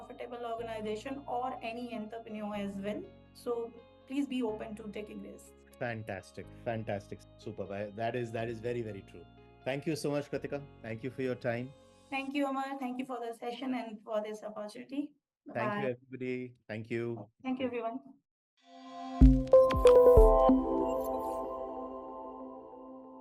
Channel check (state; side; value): identical; both; correlation 1.00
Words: organization or any entrepreneur as well. So please be open to taking risks. Fantastic, fantastic, superb. That is very, very true. Thank you so much, Kratika. Thank you for your time. Thank you, Amar. Thank you for the session and for this opportunity. Bye Thank you, bye. everybody. Thank you. Thank you, everyone.